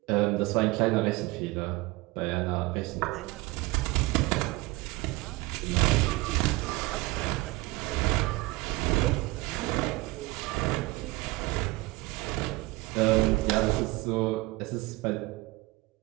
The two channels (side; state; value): left; quieter; 22.0 dB